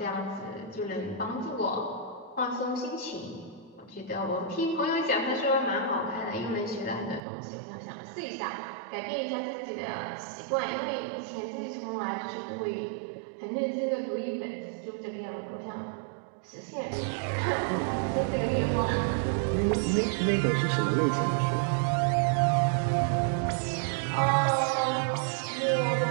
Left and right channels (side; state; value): left; drops out; at 7.2 s